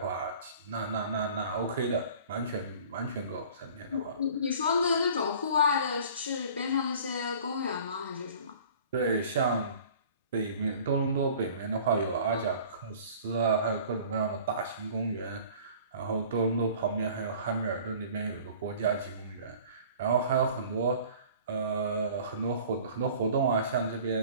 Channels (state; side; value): inverted; both; correlation -0.47